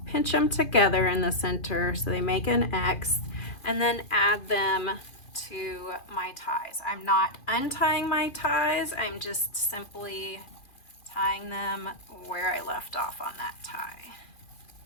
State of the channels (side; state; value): right; late; 2.5 ms